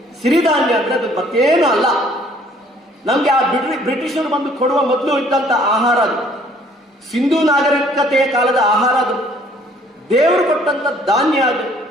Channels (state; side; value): normal; both; correlation 0.59